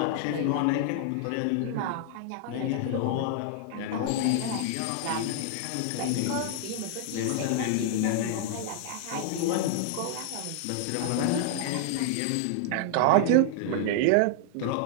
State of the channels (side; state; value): both; different; correlation -0.01